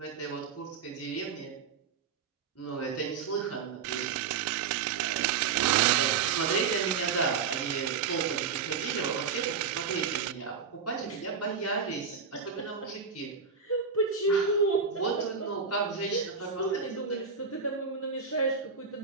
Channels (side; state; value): left; quieter; 5.9 dB